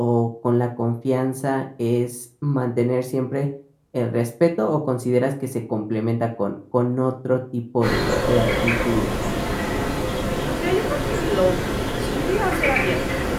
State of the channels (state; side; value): identical; both; correlation 1.00